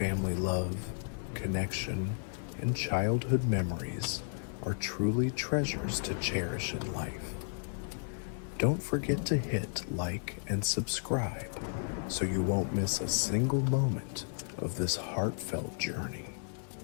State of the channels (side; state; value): right; silent; digital silence